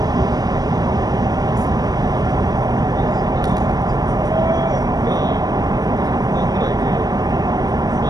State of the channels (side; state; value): left; late; 0.19 ms